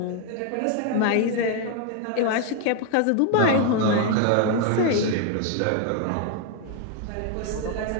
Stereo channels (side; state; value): both; different; correlation 0.00